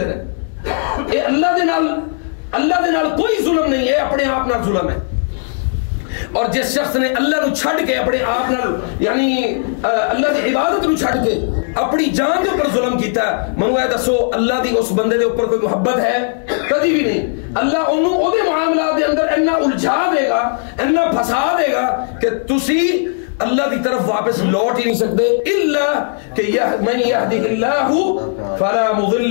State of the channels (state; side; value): silent; right; digital silence